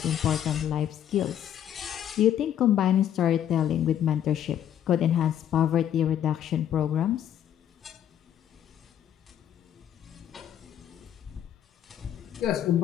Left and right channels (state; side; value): quieter; right; 10.2 dB